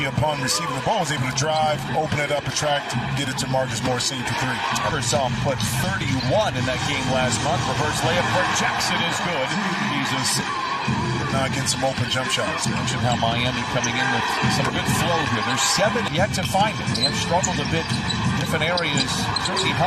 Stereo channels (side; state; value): both; identical; correlation 1.00